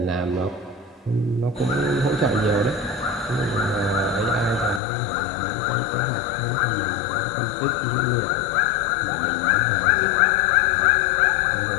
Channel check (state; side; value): drops out; right; at 4.8 s